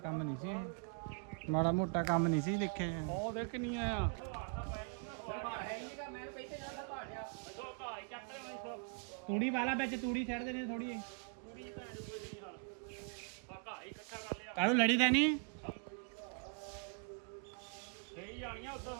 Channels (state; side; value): quieter; left; 38.7 dB